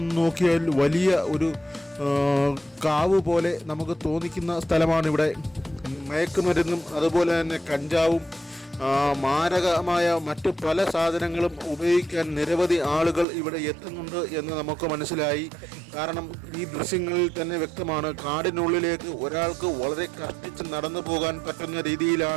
നോക്കിയാൽ വലിയ ഒരു കാവ് പോലെ നമുക്ക് തോന്നിക്കുന്ന സ്ഥലമാണിവിടെ. മയക്കുമരുന്നും അതുപോലെ തന്നെ കഞ്ചാവും മാരകമായ മറ്റ് പല സാധനങ്ങളും ഉപയോഗിക്കാൻ നിരവധി ആളുകൾ ഇവിടെ എത്തുന്നുണ്ട് എന്ന് നമുക്ക് മനസ്സിലായി. കാരണം ഈ ദൃശ്യങ്ങളിൽ തന്നെ വ്യക്തമാണ്. കാടിനുള്ളിലേക്ക് ഒരാൾക്ക് വളരെ കഷ്ടിച്ച് നടന്നു പോകാൻ പറ്റുന്ന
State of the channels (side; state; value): left; drops out; at 13.2 s